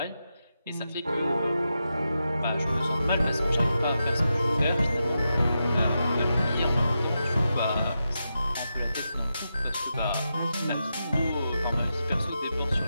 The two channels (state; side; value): inverted; both; correlation -0.88